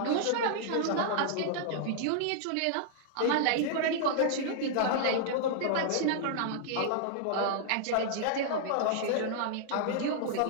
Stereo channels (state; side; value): different; both; correlation -0.01